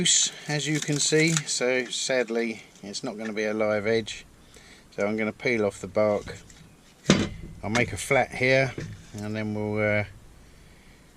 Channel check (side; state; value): both; identical; correlation 1.00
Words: as you can see, so sadly it's not going to be a live edge, so I'm going to peel off the bark. I'll make a flat here and then we'll